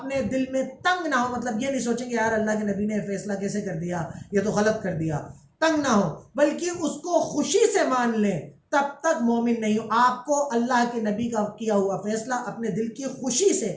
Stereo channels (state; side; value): identical; both; correlation 1.00